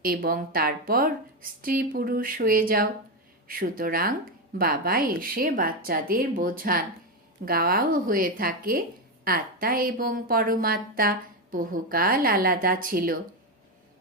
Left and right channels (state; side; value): normal; both; correlation 0.10